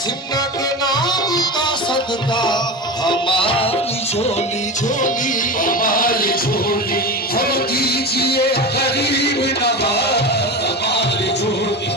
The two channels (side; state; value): both; normal; correlation 0.25